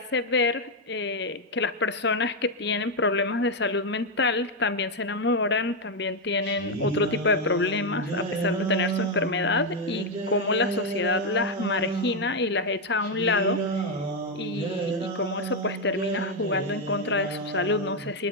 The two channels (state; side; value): normal; both; correlation 0.03